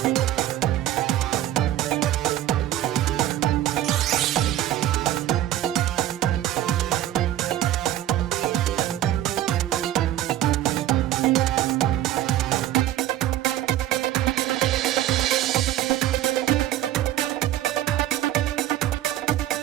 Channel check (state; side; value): quieter; left; 12.9 dB